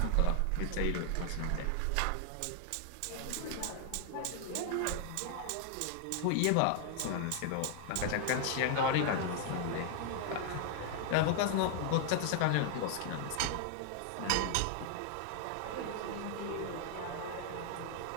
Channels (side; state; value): both; different; correlation 0.00